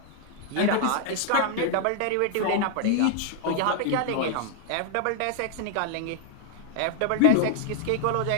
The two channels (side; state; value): both; different; correlation 0.00